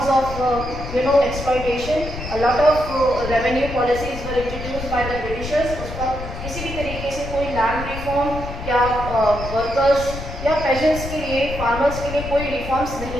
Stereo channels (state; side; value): noise; left; rumble, 8 dB below the sound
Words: of exploitation. A lot of revenue policies were introduced by the Britishers. उसका किसी भी तरीके से कोई लैंड रिफॉर्म या वर्कर्स या पेजेंट्स के लिए, फार्मर्स के लिए कोई रिफॉर्म्स